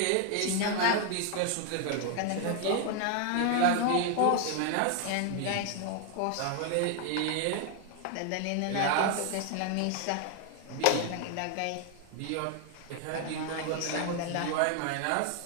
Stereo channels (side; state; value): both; different; correlation 0.01